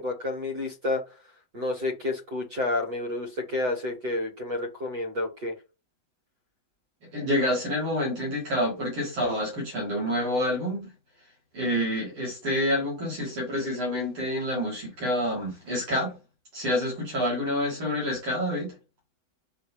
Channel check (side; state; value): left; late; 8.0 ms